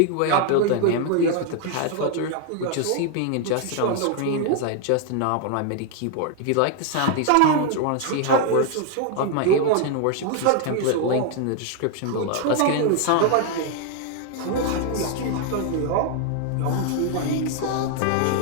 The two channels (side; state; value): both; different; correlation 0.00